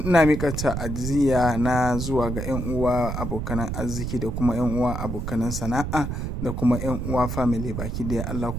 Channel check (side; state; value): right; noise; rumble, 3 dB below the sound